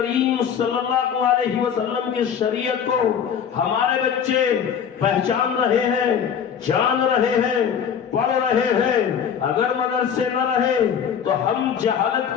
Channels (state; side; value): quieter; right; 7.9 dB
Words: صلی اللہ علیہ وسلم کی شریعت کو ہمارے بچے پہچان رہے ہیں، جان رہے ہیں، پڑھ رہے ہیں۔ اگر مدرسے نہ رہے تو ہم جہالت